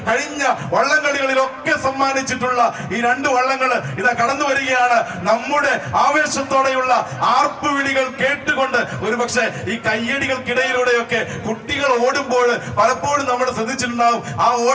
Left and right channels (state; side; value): identical; both; correlation 1.00